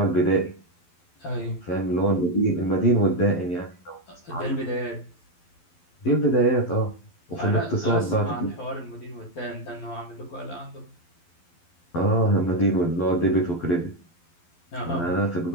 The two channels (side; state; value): right; late; 12 ms